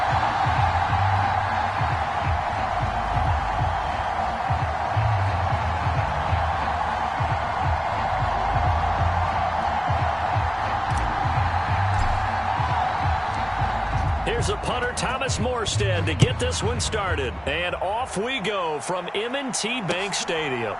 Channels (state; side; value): identical; both; correlation 1.00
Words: Here's a punter, Thomas Morstead, to get this one started. And off we go from M&T Bank Stadium.